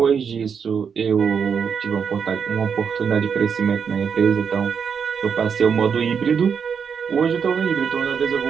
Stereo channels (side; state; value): left; quieter; 6.7 dB